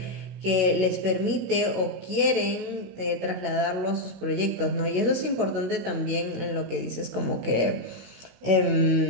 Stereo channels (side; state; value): left; late; 16 ms